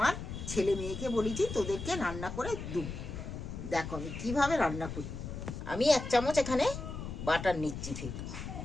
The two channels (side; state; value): left; noise; rumble, 7 dB below the sound